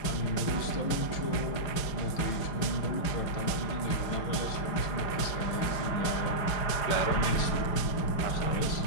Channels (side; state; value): right; late; 5.0 ms